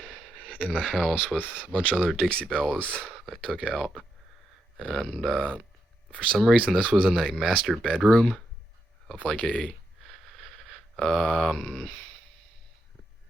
in the house with a bunch of other Dixie Bells I took out, and for some reason this was in a master bedroom of like a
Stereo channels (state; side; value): normal; both; correlation 0.83